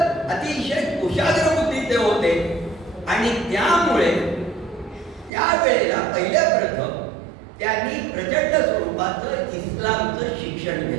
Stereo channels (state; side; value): drops out; left; at 5.3 s